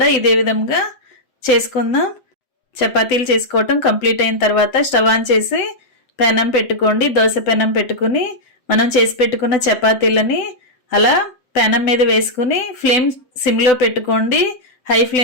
ఇదే విధంగా చేసుకుందాం. చపాతీలు చేసుకోవటం కంప్లీట్ అయిన తర్వాత స్టవ్ ఆన్ చేసి పెనం పెట్టుకోండి. దోశ పెనం పెట్టుకుని మనం చేసి పెట్టుకున్న చపాతీలని అలా పెనం మీద వేసుకుని ఫ్లేమ్ సిమ్లో పెట్టుకోండి. హై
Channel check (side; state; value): right; late; 7.9 ms